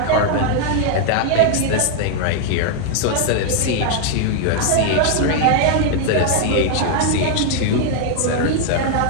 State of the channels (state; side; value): different; both; correlation 0.00